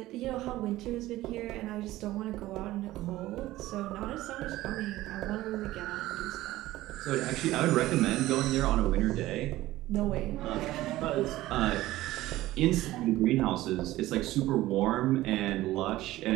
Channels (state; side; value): quieter; left; 16.4 dB